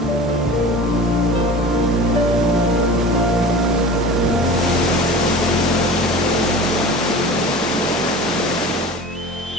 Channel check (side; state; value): both; normal; correlation 0.36